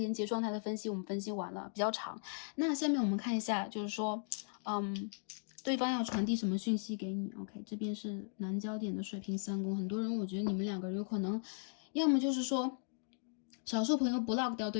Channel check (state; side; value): silent; right; digital silence